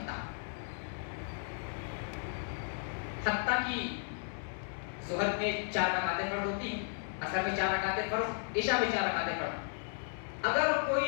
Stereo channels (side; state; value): right; silent; 55 dB below the other